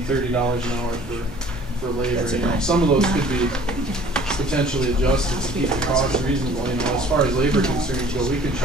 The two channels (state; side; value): normal; both; correlation 0.51